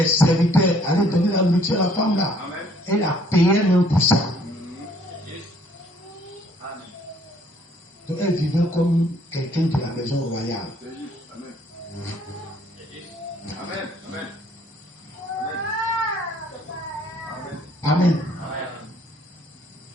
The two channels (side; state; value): both; normal; correlation 0.61